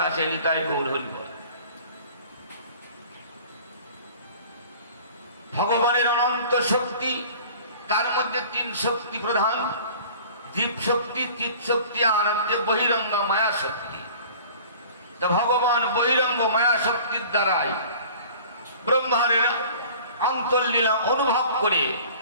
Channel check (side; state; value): both; inverted; correlation -0.45